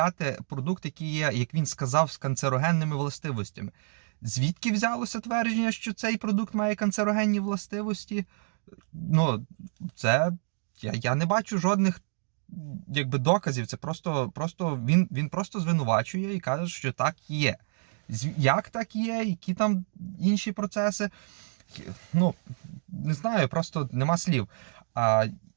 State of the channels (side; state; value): left; silent; digital silence